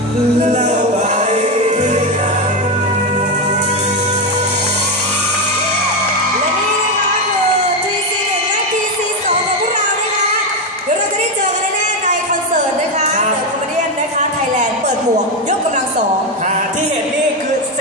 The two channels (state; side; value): normal; both; correlation 0.10